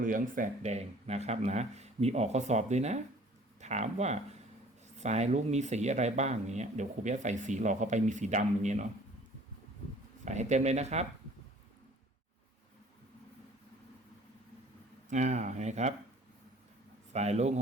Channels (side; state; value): both; normal; correlation 0.52